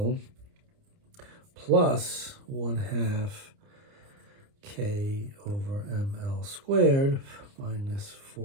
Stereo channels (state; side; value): late; left; 29 ms